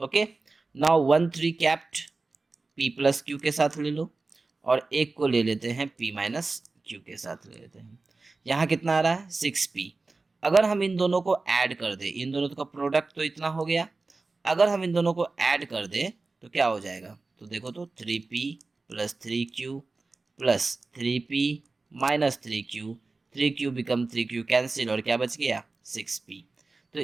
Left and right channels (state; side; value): quieter; left; 3.7 dB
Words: Okay, now 1 3 kept p plus q के साथ ले लो, और एक को ले लेते हैं p माइनस q के साथ ले लेते हैं। यहाँ कितना आ रहा है, 6p। अगर हम इन दोनों को ऐड कर दें, इन दोनों का प्रोडक्ट तो इतना हो गया, अगर हम इन दोनों को ऐड कर दें तो क्या हो जाएगा, तो देखो तो 3p plus 3q plus 3p minus 3q, 3q become 3q cancel, और क्या बच गया, 6p। तो